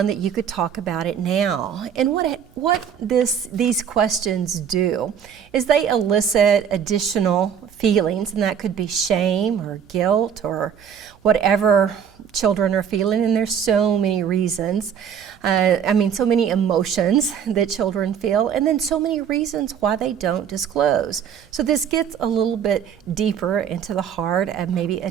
that you could talk about it now? And what these questions do is they elicit additional feelings, and that could be shame or guilt or whatever children are feeling, and there's so many reasons. So many emotions that children feel, and then so many reasons why they don't disclose. So this gets a little bit deeper into the heart of maybe a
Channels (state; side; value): quieter; left; 8.0 dB